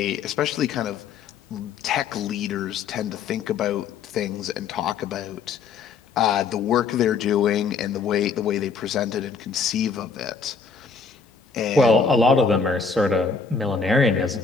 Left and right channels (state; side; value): quieter; right; 5.3 dB